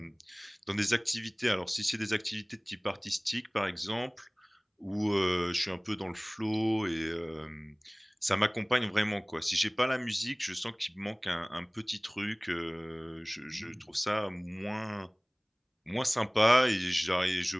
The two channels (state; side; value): identical; both; correlation 1.00